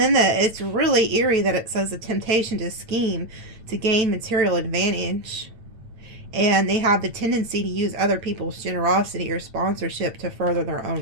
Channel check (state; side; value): late; left; 8.9 ms